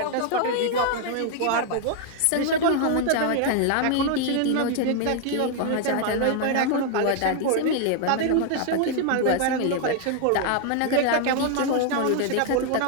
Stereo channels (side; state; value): both; different; correlation 0.00